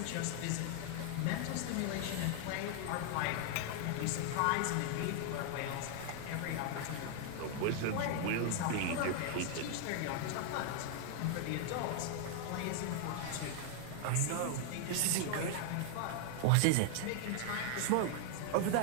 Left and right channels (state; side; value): different; both; correlation 0.00